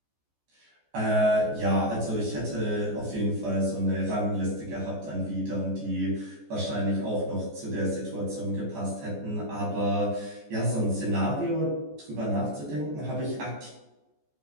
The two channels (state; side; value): late; left; 14 ms